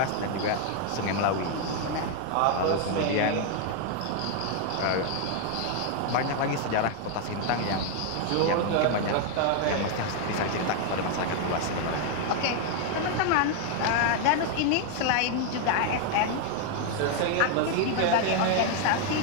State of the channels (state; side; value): different; both; correlation 0.00